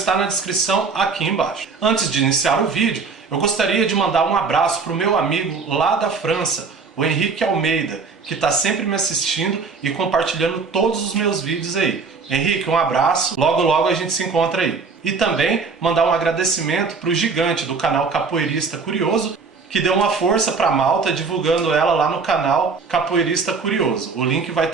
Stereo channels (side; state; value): left; quieter; 4.8 dB